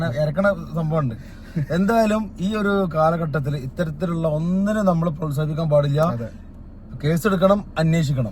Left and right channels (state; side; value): identical; both; correlation 1.00